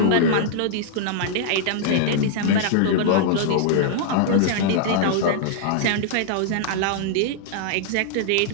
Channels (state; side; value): different; both; correlation -0.01